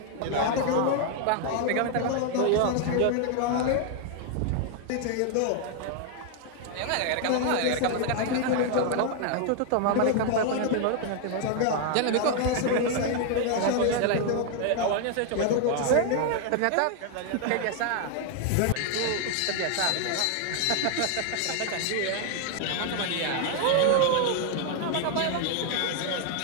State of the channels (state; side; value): different; both; correlation 0.00